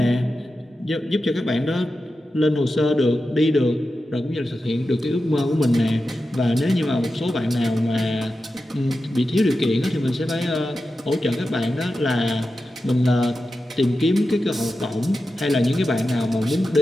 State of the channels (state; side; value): normal; both; correlation 0.91